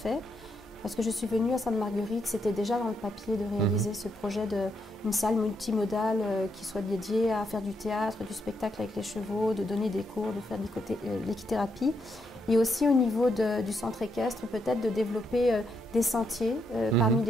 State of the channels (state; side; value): normal; both; correlation 0.79